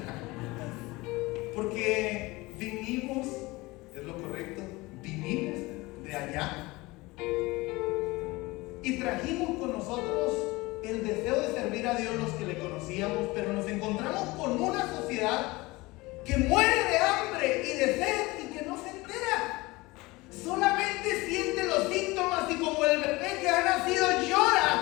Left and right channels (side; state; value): right; quieter; 21.9 dB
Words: Porque vinimos, es lo correcto, vinimos de allá y trajimos con nosotros el deseo de servir a Dios los que le conocíamos, pero nos encontramos con una sociedad que muere de hambre y de sed y que no se entera. Solamente siente los síntomas y como el bebé que ha nacido